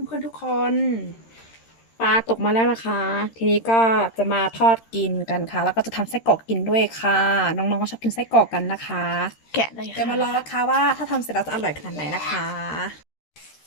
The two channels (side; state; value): right; late; 13 ms